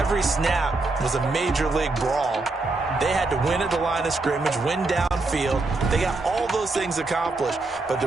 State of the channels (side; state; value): left; quieter; 3.4 dB